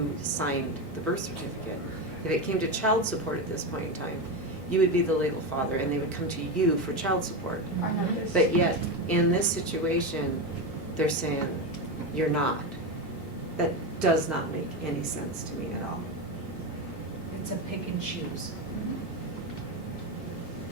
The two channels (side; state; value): both; normal; correlation 0.15